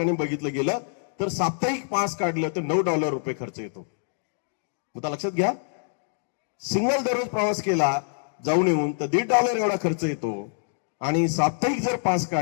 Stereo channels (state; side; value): silent; right; digital silence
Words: बघितलं गेलं तर साप्ताहिक पास काढलं तर $9 खर्च येतो. आता लक्षात घ्या, सिंगल दररोज प्रवास केला जाऊन येऊन तर $1.50 एवढा खर्च येतो. आणि साप्ताहिक जर पास